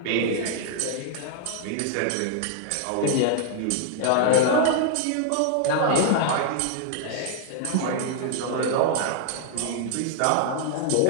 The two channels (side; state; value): both; different; correlation -0.01